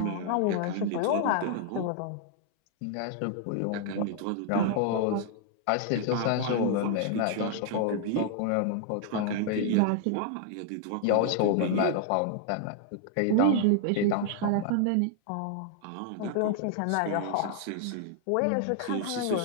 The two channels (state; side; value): different; both; correlation 0.00